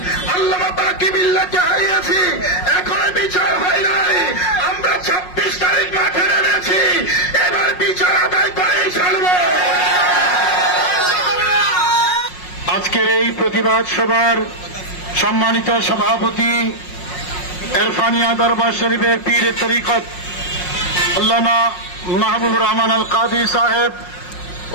আল্লামা বাকিবিল্লাহকে হারিয়েছি, এখনো বিচার হয় নাই। আমরা 26 তারিখ মাঠে নেমেছি, এবার বিচার আদায় করেই ছাড়ব। আজকের এই প্রতিবাদ সভার সম্মানিত সভাপতি এরফানিয়া দরবার শরীফের পীর তরিকত আল্লামা মাহবুবুর রহমান আল কাদি সাহেব,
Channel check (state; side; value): late; right; 5.5 ms